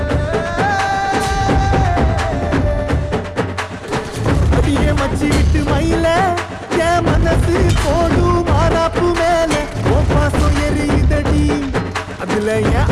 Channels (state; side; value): identical; both; correlation 1.00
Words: அடியே மச்சி விட்டு மயில என் மனசு போடு மாறாப்பு மேல ஓ பாசம் எரியுதடி அதுல என்